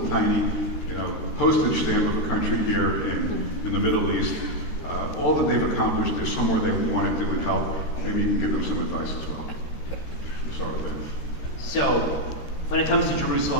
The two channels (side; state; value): right; late; 13 ms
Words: tiny, postage stamp of a country here in the Middle East. All that they've accomplished, there's somewhere they want to do and help. Maybe you can give them some advice as well. We'll start with that. So, when it comes to